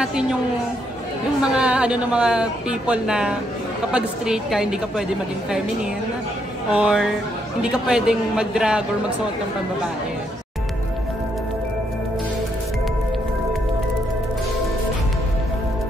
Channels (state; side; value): normal; both; correlation 0.75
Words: yung mga ng mga people na kapag straight ka, hindi ka pwede maging feminine or hindi ka pwedeng mag-drag or magsuot ng pambabae.